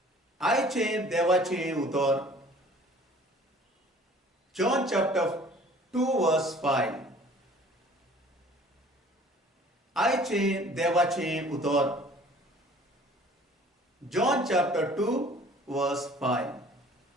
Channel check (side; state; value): both; normal; correlation 0.51